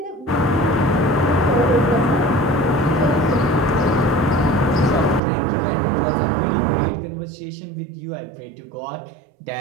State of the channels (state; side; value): drops out; left; at 5.2 s